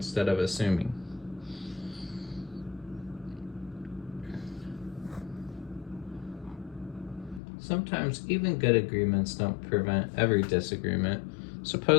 of assuming. Sometimes even good agreements don't prevent every disagreement.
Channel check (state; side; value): drops out; right; at 7.4 s